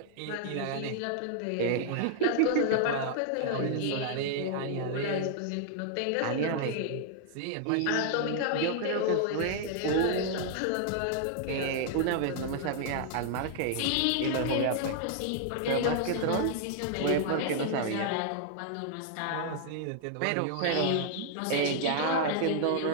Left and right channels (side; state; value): both; different; correlation -0.01